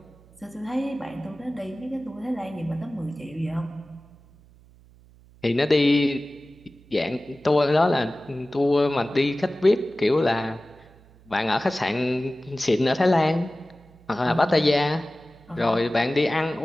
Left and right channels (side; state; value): right; noise; hum, 26 dB below the sound